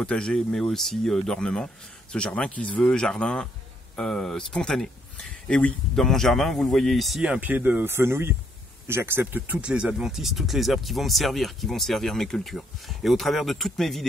mais aussi d'ornement. Ce jardin qui se veut jardin spontané. Et oui, dans mon jardin, vous le voyez ici, un pied de fenouil, j'accepte toutes les adventices, toutes les herbes qui vont me servir, qui vont servir mes cultures. Et au travers de toutes mes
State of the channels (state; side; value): normal; both; correlation 0.70